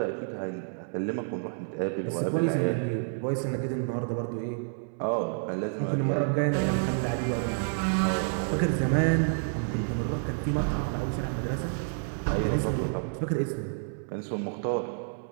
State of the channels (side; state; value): left; silent; 58 dB below the other